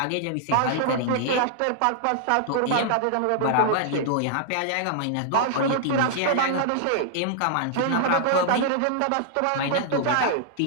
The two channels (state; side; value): different; both; correlation -0.01